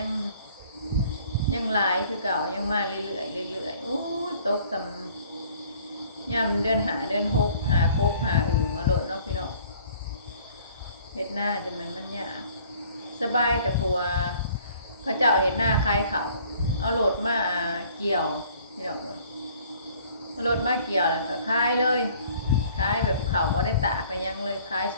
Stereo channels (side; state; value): both; inverted; correlation -0.56